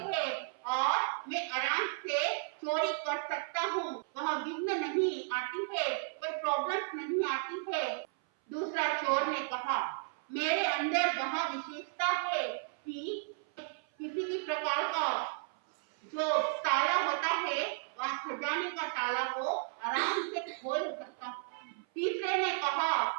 हैं और मैं आराम से चोरी कर सकता हूँ। वहां विघ्न नहीं आती है, कोई प्रॉब्लम नहीं आती है। दूसरा चोर ने कहा, मेरे अंदर वह विशेषता है कि किसी भी प्रकार का जो ताला होता है वह खजाने का ताला को आराम से खोल सकता है। तीसरे ने कहा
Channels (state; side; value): silent; left; 55 dB below the other